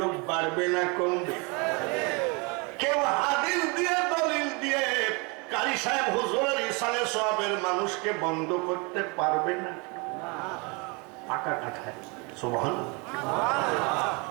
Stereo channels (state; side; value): quieter; left; 30.3 dB